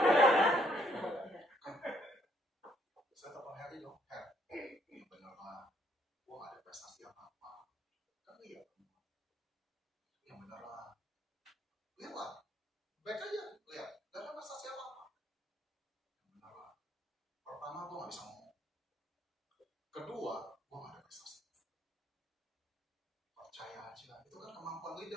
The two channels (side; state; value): both; normal; correlation 0.68